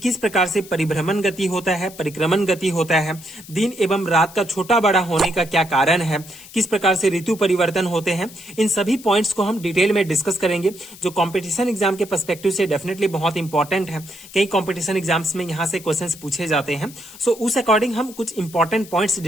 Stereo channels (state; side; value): noise; left; hiss, 18 dB below the sound